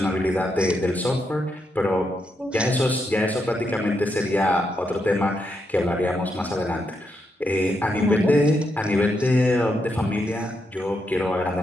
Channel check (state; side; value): normal; both; correlation 0.81